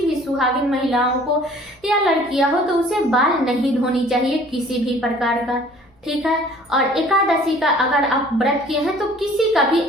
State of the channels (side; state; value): both; normal; correlation 0.52